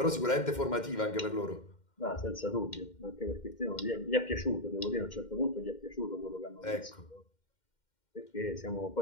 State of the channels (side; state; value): right; late; 2.1 ms